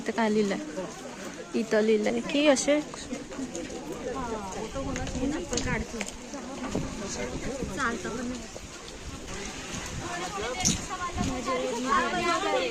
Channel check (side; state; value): both; identical; correlation 1.00